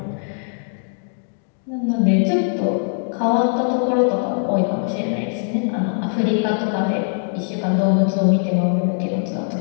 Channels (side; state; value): right; silent; 64 dB below the other